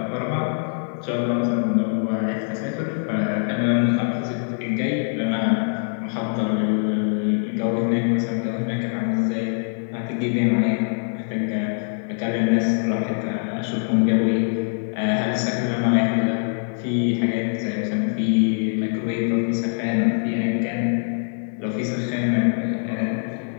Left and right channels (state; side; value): silent; right; digital silence